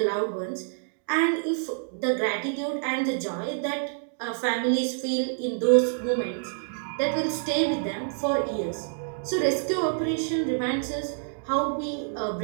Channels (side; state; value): left; silent; digital silence